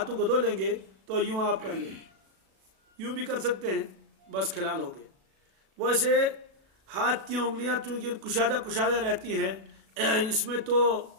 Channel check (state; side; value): late; left; 37 ms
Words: کو دھو لیں گے تو یوں آپ کر لیں، یوں بھی کر سکتے ہیں، بس خلال ہو گئے۔ ویسے ہاتھ کی انگلیاں چونکہ کشادہ رہتی ہیں، اس میں تو